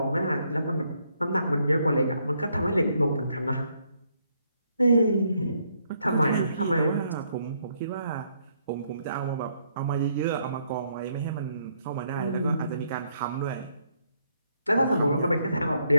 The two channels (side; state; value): both; inverted; correlation -0.72